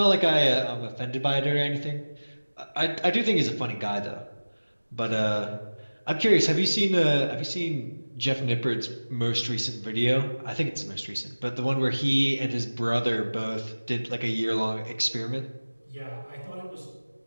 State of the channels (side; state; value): both; inverted; correlation -1.00